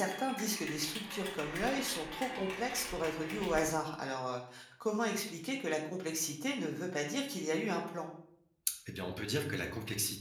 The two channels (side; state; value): both; identical; correlation 1.00